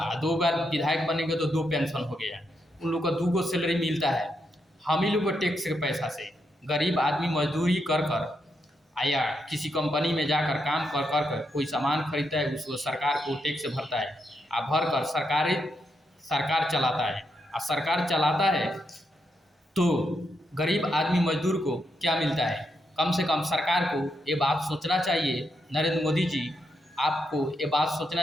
दो बार विधायक बनेंगे तो दो पेंशन हो गया। उन लोग को दो गो सैलरी मिलता है। हम ही लोग को टैक्स के पैसा से गरीब आदमी मजदूरी कर कर या किसी कंपनी में जाकर काम कर कर कर कोई सामान खरीदता है, उसको सरकार को टैक्स भरता है और भर कर सरकार चलाता है। और सरकार चलाता है तो गरीब आदमी मजदूर को क्या मिलता है? कम से कम सरकार को ये बात सोचना चाहिए, नरेंद्र मोदी जी आपको ये बात सोचना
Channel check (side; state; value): both; normal; correlation 0.81